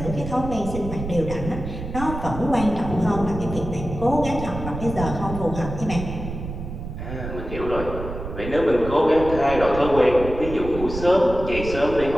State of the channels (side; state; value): right; noise; rumble, 8 dB below the sound